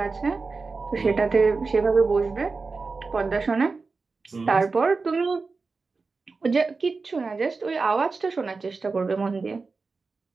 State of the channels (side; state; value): left; quieter; 4.2 dB